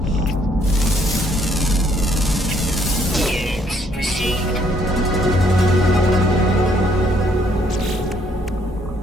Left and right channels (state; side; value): normal; both; correlation 0.67